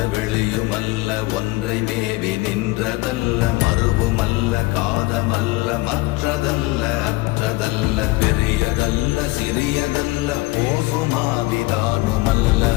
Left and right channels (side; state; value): right; quieter; 21.9 dB